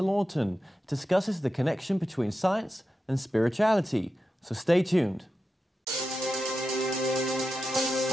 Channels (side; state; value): both; normal; correlation 0.90